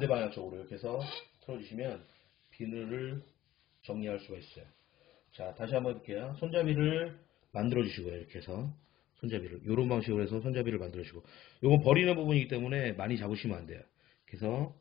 방향 쪽으로 이렇게 해서 틀어주시면 비늘을 정리할 수가 있어요. 자, 다시 한번 해볼게요. 손잡이를 만들어 주시고요. 이렇게 해서 손잡이를 이런 방식으로 해서 손잡이를 만들어 주시고, 요건 버리는 부분이기 때문에 많이 잡으시면 안 돼요. 그래서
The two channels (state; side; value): quieter; right; 14.4 dB